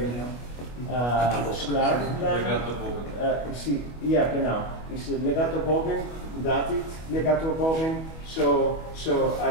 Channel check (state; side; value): late; right; 25 ms